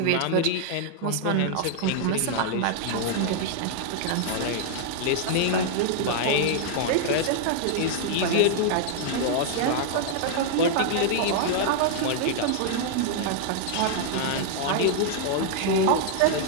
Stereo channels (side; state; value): both; different; correlation -0.01